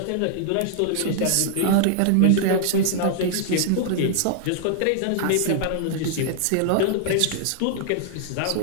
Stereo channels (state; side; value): different; both; correlation -0.01